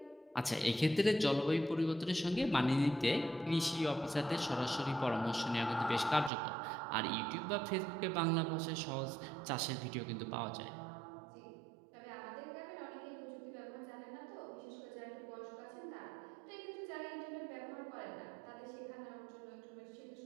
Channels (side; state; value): left; drops out; at 6.3 s